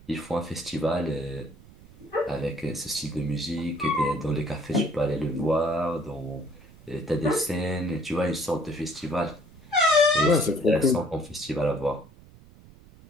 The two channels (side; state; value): right; noise; rumble, 23 dB below the sound